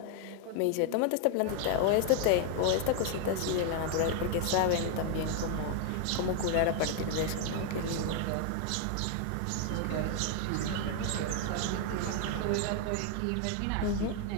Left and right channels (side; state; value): both; different; correlation 0.00